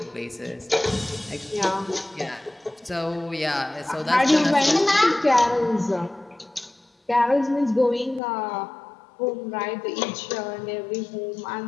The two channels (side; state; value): right; drops out; at 8.2 s